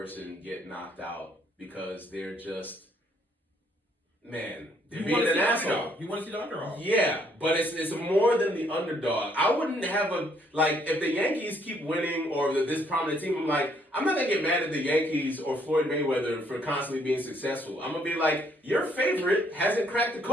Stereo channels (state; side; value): normal; both; correlation 0.68